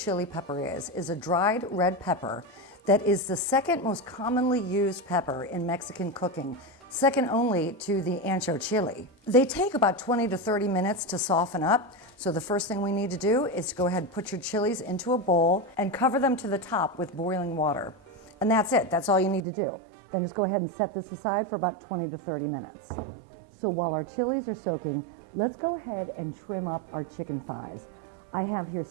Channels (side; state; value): left; drops out; at 19.5 s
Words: pepper is a dried red pepper that is the second most commonly used pepper in Mexican cooking, second only to the ancho chili. They take about 20 to 30 minutes to soften up. So the first thing we need to do is to go ahead and put your chilies into a bowl and cover them to the top with boiling water. And that's it, that's all you need to do. Then just go ahead and set this aside for about 20 to 30 minutes. So while our chilies are soaking, let's go ahead and trim up our chicken thighs. I have here